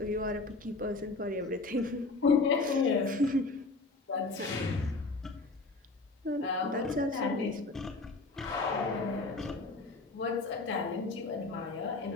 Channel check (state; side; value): quieter; right; 3.5 dB